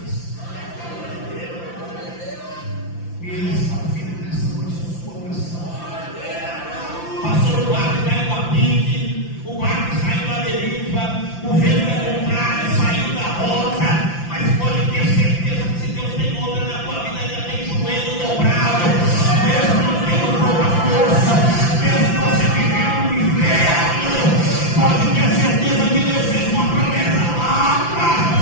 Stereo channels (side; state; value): right; late; 5.9 ms